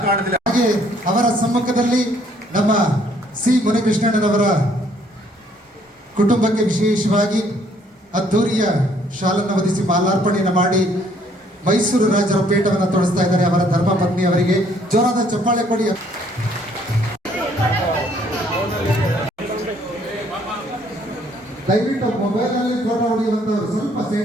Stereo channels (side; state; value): both; normal; correlation 0.64